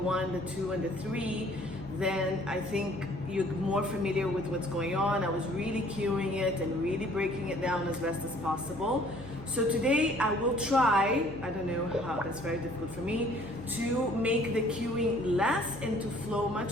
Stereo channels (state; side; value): noise; right; hum, 16 dB below the sound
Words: the 2, and the 3, then I think you're more familiar with what's going on. I was really cueing it and really breaking it down as best as possible. So today I will try, I don't know how, that's very difficult for me, to make the cueing less and to flow